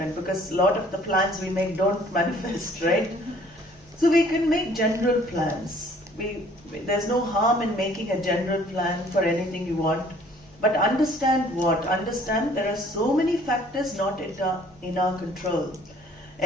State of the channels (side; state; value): both; normal; correlation 0.57